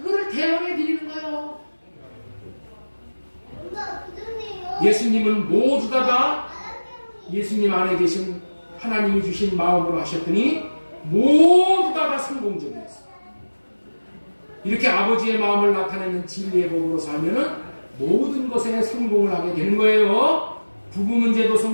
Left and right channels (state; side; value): inverted; both; correlation -1.00